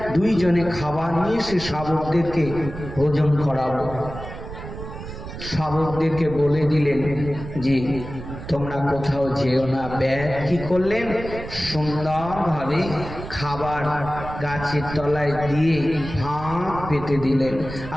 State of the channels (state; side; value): noise; right; rumble, 11 dB below the sound